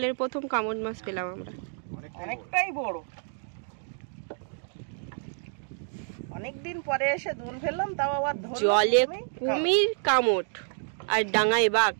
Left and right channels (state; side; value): silent; left; 58 dB below the other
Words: প্রথম কামড় মাছ পেলাম আমরা। অনেকটাই বড়। অনেকদিন পরে এসে দোল ফেললাম, তাও আবার জলে কুমির কামড় আর ডাঙায় বাঘ।